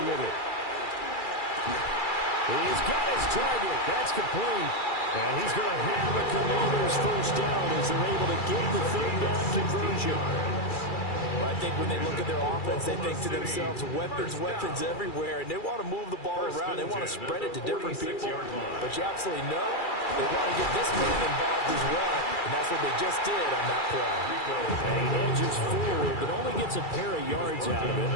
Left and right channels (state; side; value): late; right; 2.3 ms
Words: with it. He's got his target. That's complete. And he's going to have a Commanders first down as they're able to get the third down conversion. Well, I think when they look at their offense, they think to themselves, weapons, weapons everywhere, and they want to move the ball around. They want to spread it to different people. But you absolutely know they want to get this man involved as well, and that's what they just did on that play. And he edges forward, but only gets a pair of yards out of